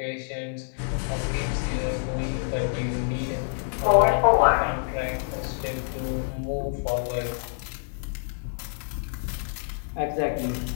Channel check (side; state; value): right; silent; digital silence